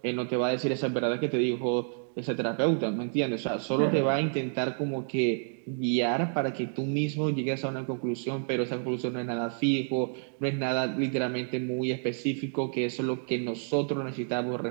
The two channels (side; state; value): left; silent; digital silence